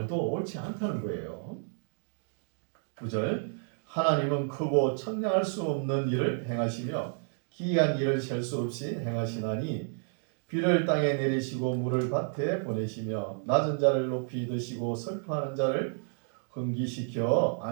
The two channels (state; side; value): silent; left; 57 dB below the other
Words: 옳지 않다는 거예요. 9절 하나님은 크고 청량할 수 없는 일을 행하시며 기이한 일을 셀 수 없이 행하시나니 비를 땅에 내리시고 물을 밭에 보내시며 낮은 자를 높이 드시고 슬퍼하는 자를 흥기시켜